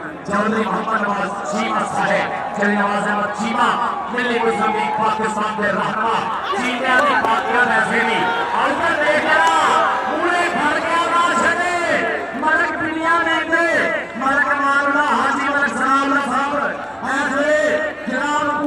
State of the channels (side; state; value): both; identical; correlation 1.00